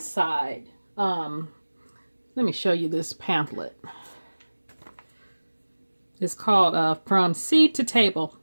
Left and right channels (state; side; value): inverted; both; correlation -1.00